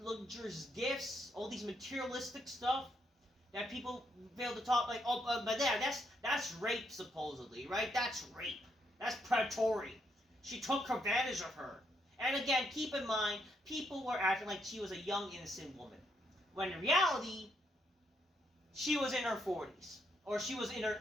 gifts. All these materialistic stuff that people fail to talk like. Oh, but that's rape supposedly, right? That's rape. That's predatory. She took advantage of her. And again, keep in mind, people were acting like she was a young, innocent woman. When in reality, she was in her 40s. Or she was in her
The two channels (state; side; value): normal; both; correlation 0.76